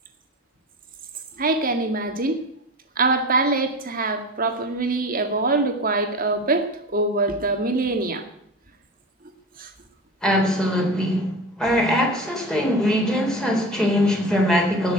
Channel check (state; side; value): normal; both; correlation 0.31